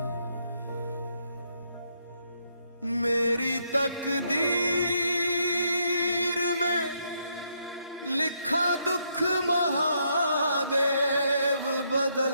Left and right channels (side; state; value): both; inverted; correlation -0.75